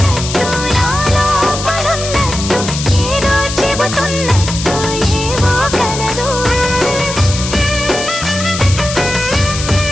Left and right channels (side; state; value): left; noise; hiss, 7 dB below the sound